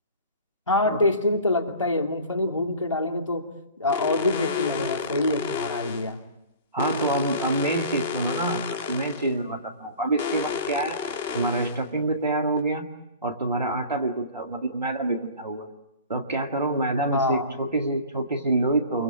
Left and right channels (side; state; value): both; inverted; correlation -0.42